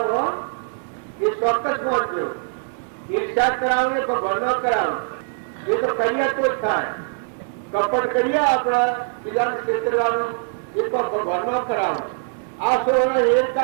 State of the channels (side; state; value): left; silent; 64 dB below the other